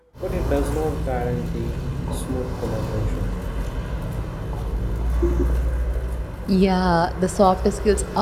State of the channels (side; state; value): both; identical; correlation 1.00